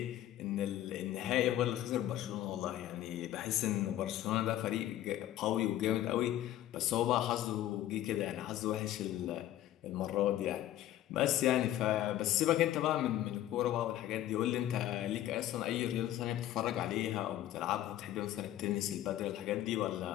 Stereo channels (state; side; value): quieter; right; 13.2 dB